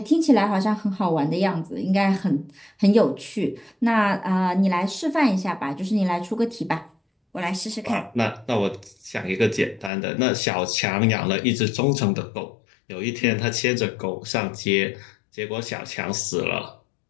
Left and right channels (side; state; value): right; drops out; at 9.9 s